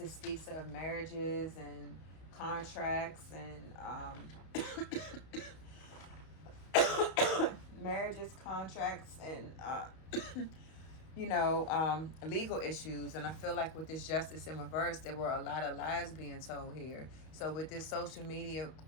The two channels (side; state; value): right; late; 32 ms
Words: speaks of marriages and contracts and marriages, contracts, and legal issues. And I feel like with this justice in reverse, there were a lot of lies being told here. So with this social media